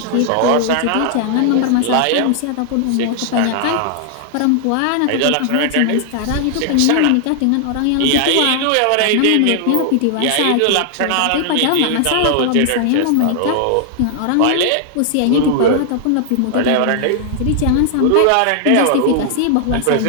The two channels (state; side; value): different; both; correlation 0.00